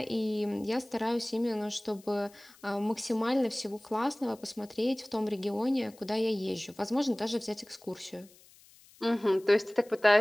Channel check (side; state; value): left; noise; hiss, 26 dB below the sound